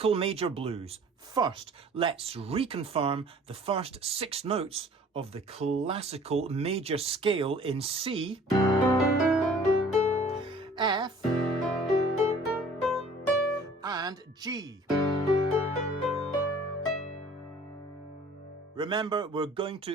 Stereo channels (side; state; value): both; normal; correlation 0.51